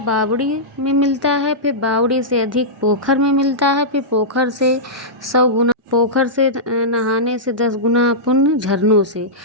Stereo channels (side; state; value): both; normal; correlation -0.14